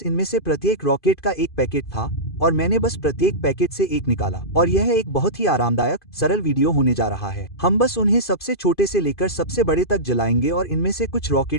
इनमें से प्रत्येक रॉकेट का एक पैकेट था और मैंने बस प्रत्येक पैकेट से एक निकाला, और यह एक बहुत ही आरामदायक सरल वीडियो होने जा रहा है। हम बस उन्हें सबसे छोटे से लेकर सबसे बड़े तक जलाएंगे और इनमें से कुछ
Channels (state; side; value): late; right; 2.5 ms